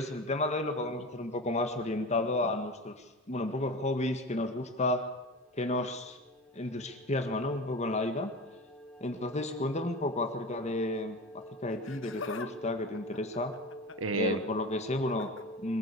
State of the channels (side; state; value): both; normal; correlation 0.30